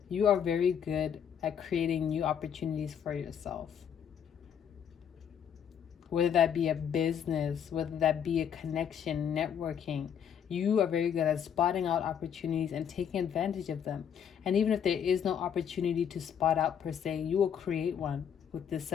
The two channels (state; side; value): quieter; right; 8.3 dB